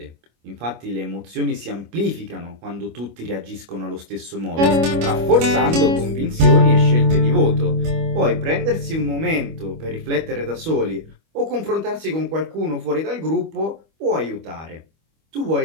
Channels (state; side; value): late; left; 25 ms